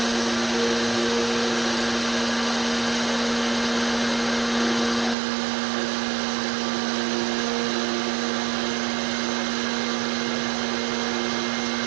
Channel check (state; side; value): drops out; left; at 5.2 s